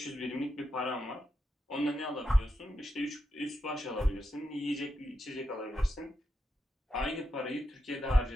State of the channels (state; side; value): normal; both; correlation 0.85